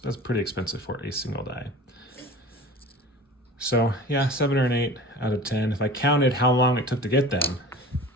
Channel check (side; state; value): both; normal; correlation 0.39